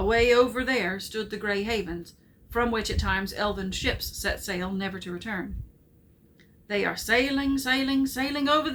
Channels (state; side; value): identical; both; correlation 1.00